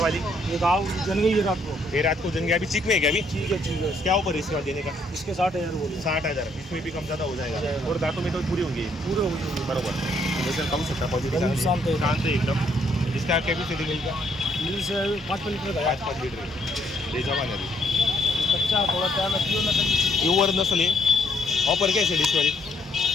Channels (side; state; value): both; normal; correlation 0.69